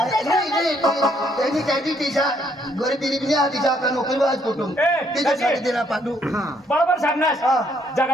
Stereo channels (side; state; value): both; normal; correlation 0.69